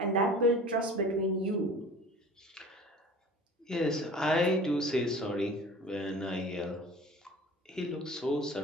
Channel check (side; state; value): both; normal; correlation 0.42